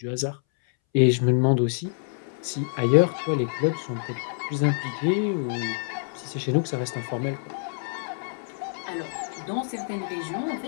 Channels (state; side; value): silent; right; 61 dB below the other